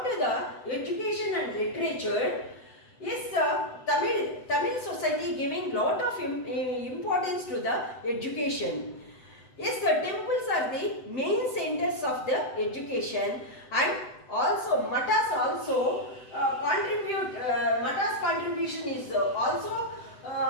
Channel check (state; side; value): late; right; 8.0 ms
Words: to the education and literature, is Tamil society giving lot of importance to the education. Yes, the temples are the main centers of the education, and also matas also matas contribution is also